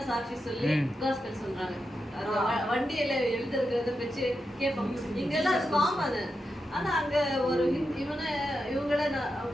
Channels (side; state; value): both; normal; correlation 0.88